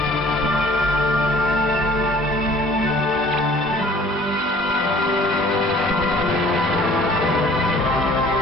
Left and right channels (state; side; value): normal; both; correlation 0.52